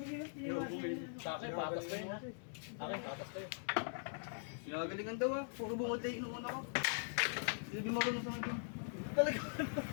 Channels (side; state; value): right; silent; digital silence